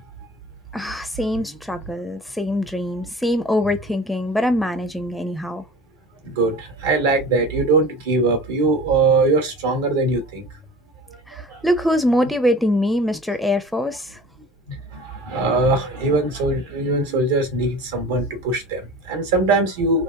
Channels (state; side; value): normal; both; correlation 0.38